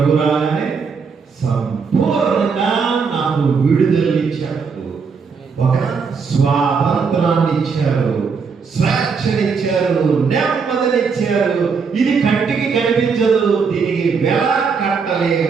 రాగానే సంపూర్ణంగా నాకు విడుదలనిచ్చాడు, ఒక స్వాతంత్రాన్ని ఇచ్చారు, స్వేచ్ఛనిచ్చారు, నెమ్మదినిచ్చారు. ఇది కంటికి కనిపించదు, దీనికి వెల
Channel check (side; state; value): left; quieter; 5.5 dB